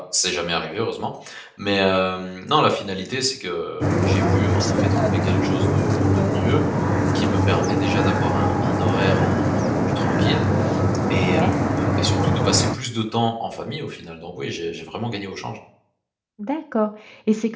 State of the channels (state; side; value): identical; both; correlation 1.00